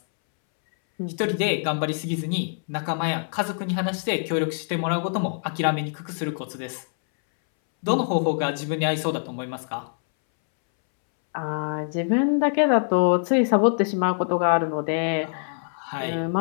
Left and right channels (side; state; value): right; silent; 62 dB below the other